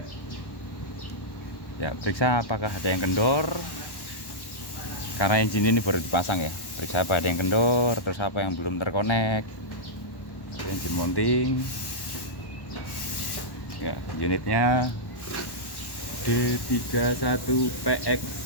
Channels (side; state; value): right; late; 1.1 ms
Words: Ya, periksa apakah ada yang kendor. Karena engine ini baru dipasang ya. Periksa apa ada yang kendor, terus apa yang belum terkonek. Engine mounting. Ya, unitnya D31PX